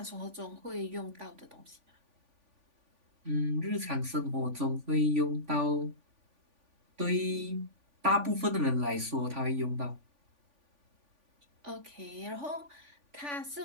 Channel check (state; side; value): late; left; 3.5 ms